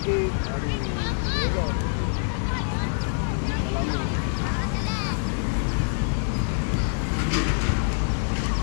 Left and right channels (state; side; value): silent; right; digital silence